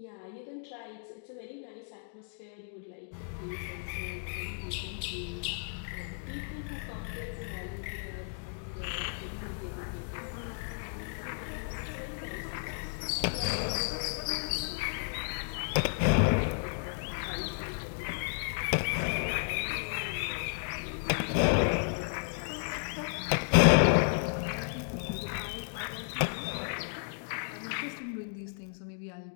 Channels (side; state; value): right; silent; 55 dB below the other